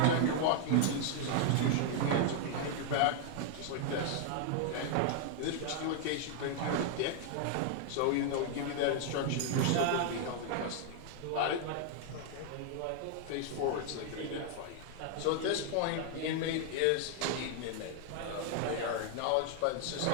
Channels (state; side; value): different; both; correlation 0.00